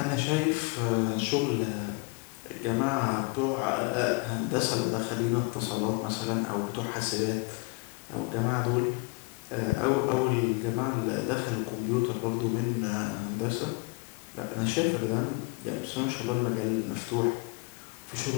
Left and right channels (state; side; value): quieter; right; 28.2 dB